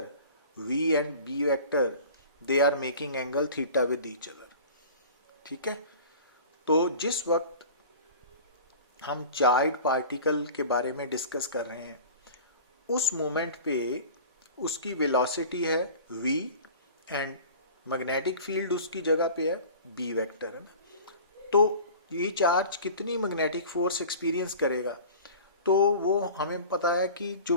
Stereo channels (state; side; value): inverted; both; correlation -0.40